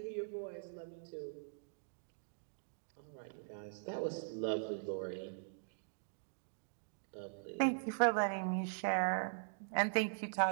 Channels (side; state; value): left; silent; digital silence